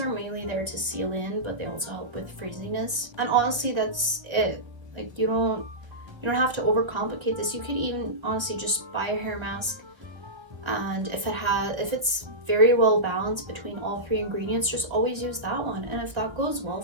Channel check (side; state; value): left; late; 1.1 ms